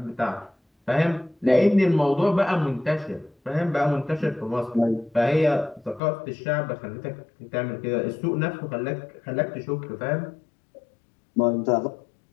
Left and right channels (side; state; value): right; drops out; at 6.0 s